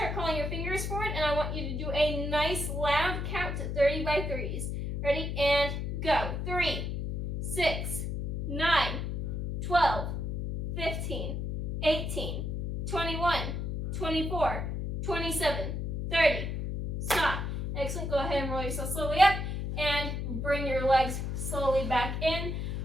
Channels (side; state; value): left; noise; hum, 2 dB below the sound